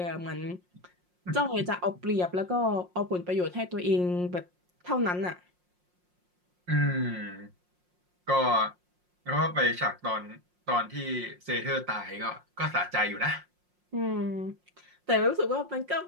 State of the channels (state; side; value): late; left; 5.6 ms